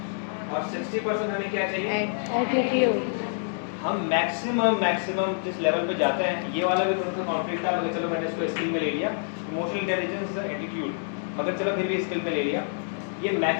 और 60% हमें क्या चाहिए? Attitude. हम मैक्सिमम जिस लेवल पे जाते हैं, ये वाला भी थोड़ा सा कॉन्फ्लिक्ट था, मगर चलो मैंने इसको स्किल में ले लिया, इमोशनल इंटेलिजेंस, एटीट्यूड, मगर चलो फिर भी स्किल में ले लिया। ये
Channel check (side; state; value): right; silent; digital silence